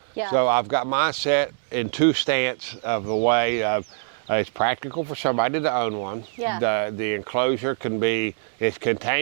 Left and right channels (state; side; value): silent; left; digital silence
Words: So I've got mine set in two stance of the way of, it's practical for somebody to own one. The enclosure can be, it's